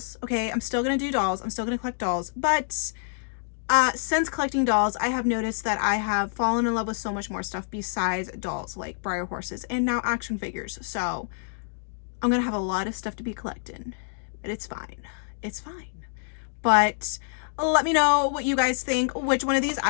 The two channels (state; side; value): silent; right; digital silence